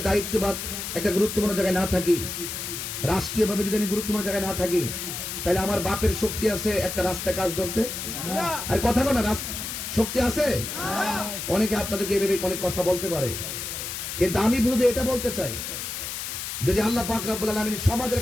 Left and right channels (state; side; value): noise; left; hiss, 6 dB below the sound